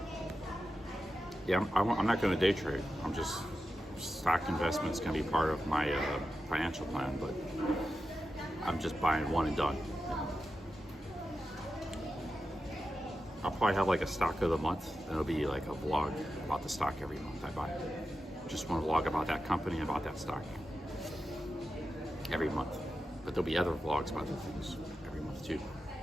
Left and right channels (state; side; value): normal; both; correlation 0.90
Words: Yeah, I'm not going to day trade. I'm just stock investment is going to be part of my financial plan, but I'm just buying one and done. I'll probably have like a stock of the month, and it'll be like a vlog about the stock every month I buy. Just want to vlog about that company and about that stock every month. But there'll be other vlogs about other things every month too.